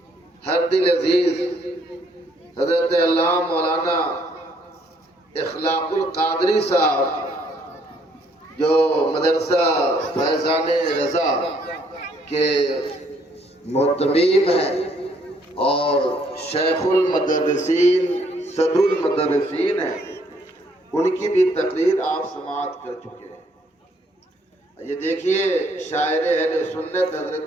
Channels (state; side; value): normal; both; correlation 0.67